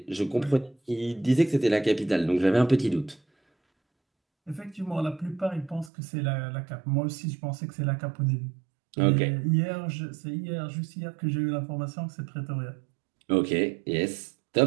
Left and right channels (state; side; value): drops out; left; at 5.9 s